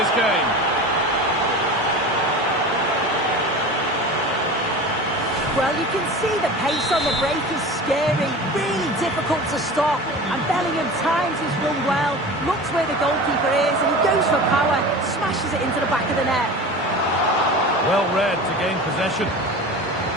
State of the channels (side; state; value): both; normal; correlation 0.34